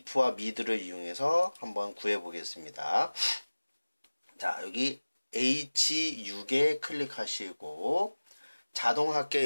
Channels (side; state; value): both; inverted; correlation -1.00